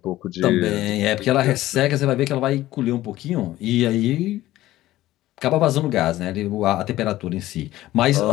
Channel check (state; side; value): quieter; right; 15.6 dB